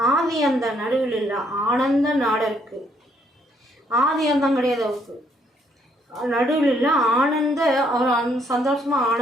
ஆதி அந்த நடுவில் இல்லை ஆனந்த நாடருக்கு. ஆதி அந்தம் கிடையாது அவருக்கு, நடுவில் இல்லை ஆனந்த, அவர் சந்தோஷமாக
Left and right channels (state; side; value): normal; both; correlation 0.69